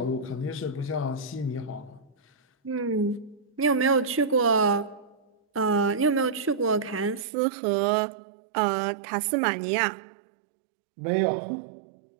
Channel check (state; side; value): drops out; left; at 7.2 s